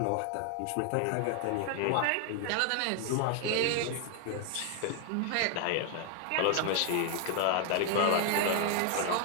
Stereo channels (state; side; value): different; both; correlation 0.01